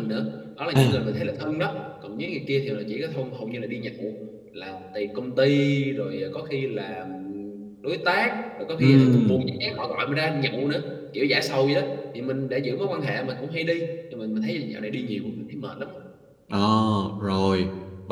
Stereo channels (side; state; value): both; identical; correlation 1.00